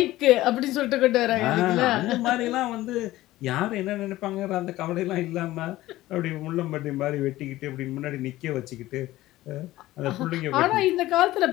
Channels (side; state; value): right; quieter; 16.5 dB